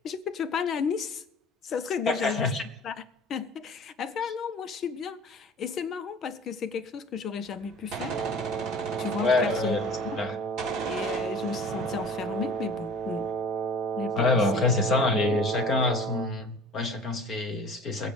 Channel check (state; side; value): normal; both; correlation 0.45